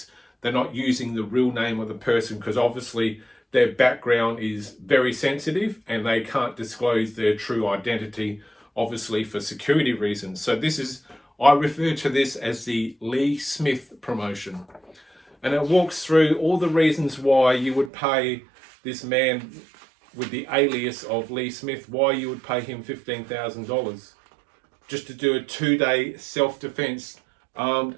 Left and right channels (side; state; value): left; drops out; at 17.9 s